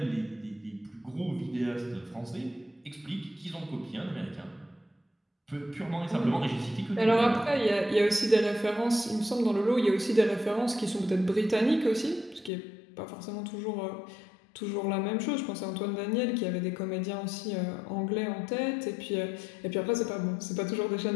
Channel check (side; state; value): right; drops out; at 12.5 s